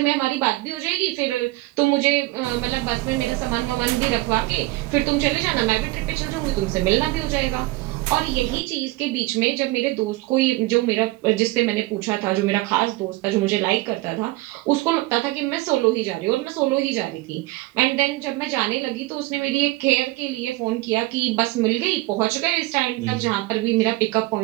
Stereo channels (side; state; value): left; quieter; 19.6 dB